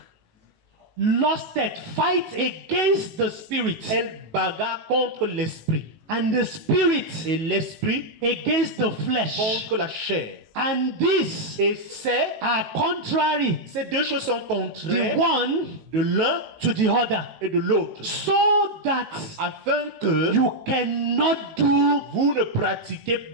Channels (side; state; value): left; late; 19 ms